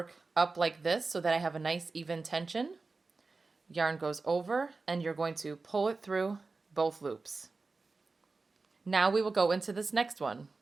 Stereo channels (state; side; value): quieter; left; 3.9 dB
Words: up like this so that I have a nice even tension. Yarn goes over and you're going to pull it through both loops. Now we will go into this next one.